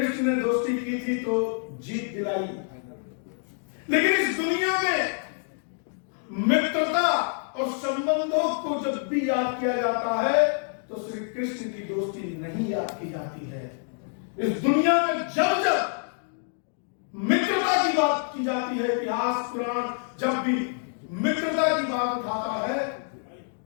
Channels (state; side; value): silent; right; 58 dB below the other